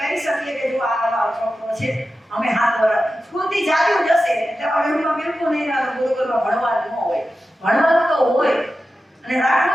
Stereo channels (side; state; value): both; normal; correlation 0.92